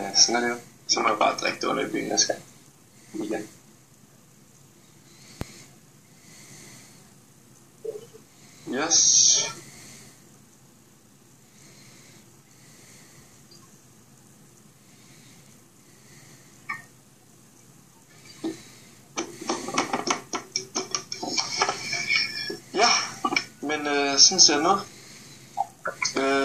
sådan er det jo. Så må jeg bare drikke det under i byen, jeg skal. Igen. Yes. Ja, men sådan ser det ud.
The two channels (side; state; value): both; identical; correlation 1.00